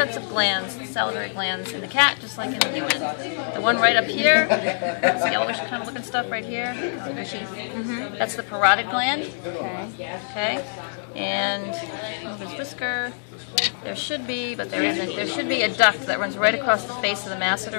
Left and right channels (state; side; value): silent; right; digital silence